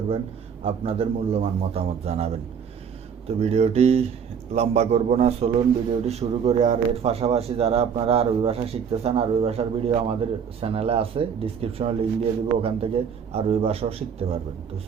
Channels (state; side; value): quieter; left; 7.1 dB